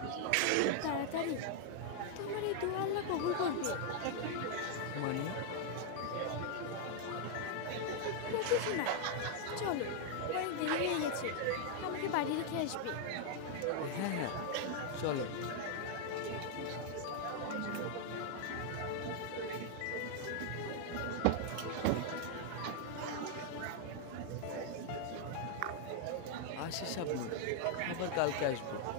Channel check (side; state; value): both; different; correlation 0.00